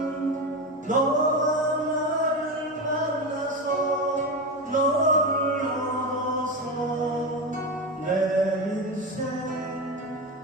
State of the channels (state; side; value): normal; both; correlation 0.18